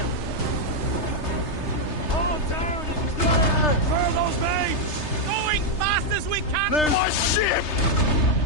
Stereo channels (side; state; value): right; late; 3.3 ms